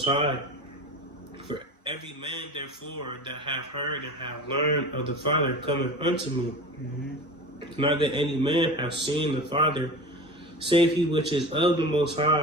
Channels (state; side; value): normal; both; correlation 0.33